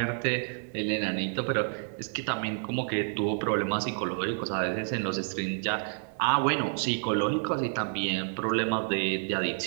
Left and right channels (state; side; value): silent; left; 58 dB below the other